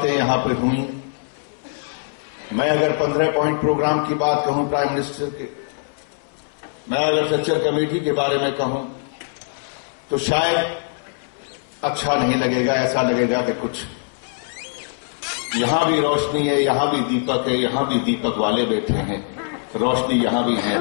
यहां पर हुई। मैं अगर 15 पॉइंट प्रोग्राम की बात कहूं प्राइम मिनिस्टर के, मैं अगर स्ट्रक्चर कमेटी के बारे में कहूं तो शायद अच्छा नहीं लगेगा, ऐसा लगेगा कि कुछ यहां भी रोशनी है, यहां भी दीपक है, यहां भी दीपक वाले बैठे हैं, रोशनी यहां भी है।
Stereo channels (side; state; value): right; silent; 64 dB below the other